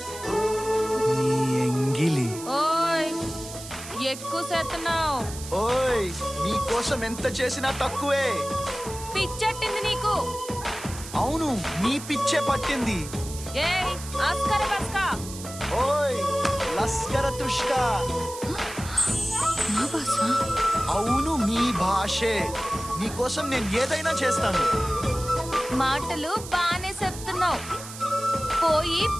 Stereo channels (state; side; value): noise; right; hiss, 12 dB below the sound